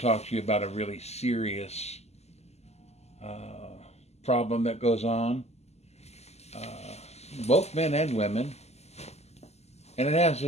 talk to you about a really serious problem that goes on, uh, both men and women, and it has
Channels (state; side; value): late; right; 0.31 ms